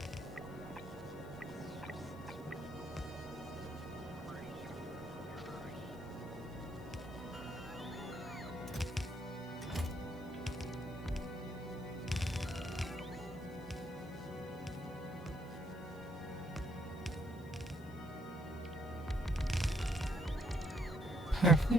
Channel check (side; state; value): left; noise; hiss, 25 dB below the sound